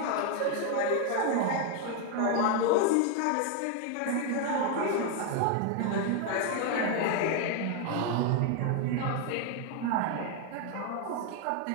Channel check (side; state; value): both; different; correlation 0.01